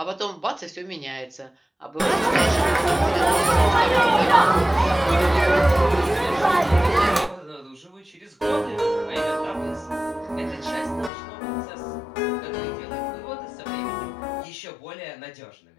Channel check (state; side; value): drops out; right; at 11.1 s